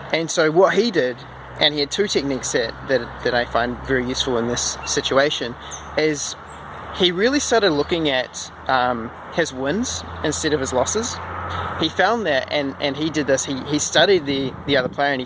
And so what he did, and he had two techniques that I find very useful in this situation, is he really started looking at his wins instead of his losses. He found that, and he did this, he studied the other player, and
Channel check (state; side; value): identical; both; correlation 1.00